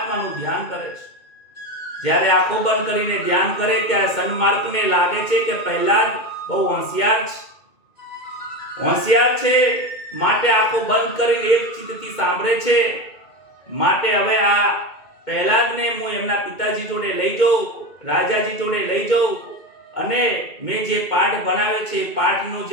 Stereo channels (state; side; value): late; right; 2.2 ms